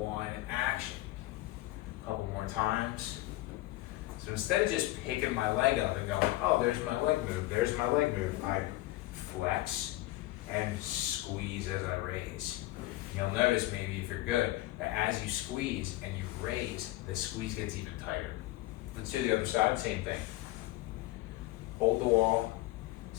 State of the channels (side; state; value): right; quieter; 17.8 dB